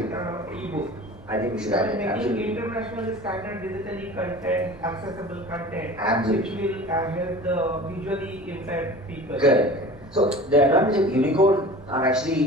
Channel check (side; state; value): both; normal; correlation 0.39